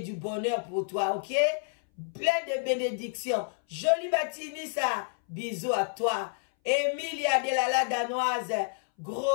du bonheur pour toi, ok? Plein de bénédictions. Jolie matinée, ça. bisous à toi. Emilia Delala Danoise,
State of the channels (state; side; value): silent; right; 58 dB below the other